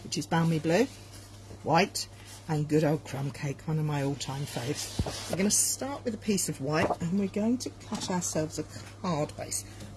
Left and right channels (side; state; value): both; identical; correlation 1.00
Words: which is balmy blue, white, and good old crumb cake, one of my all-time faves. We're going to start with a piece of white, and we're going to cut ourselves a card base.